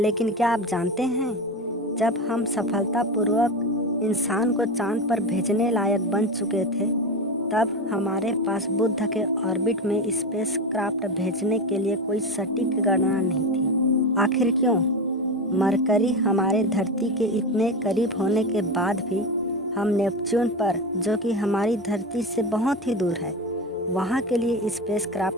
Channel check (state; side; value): normal; both; correlation 0.21